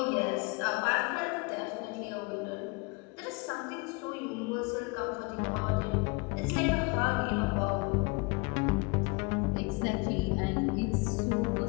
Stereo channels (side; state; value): right; quieter; 29.5 dB